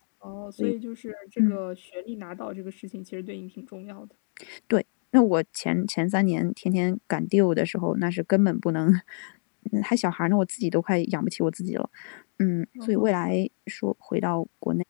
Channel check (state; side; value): silent; right; 60 dB below the other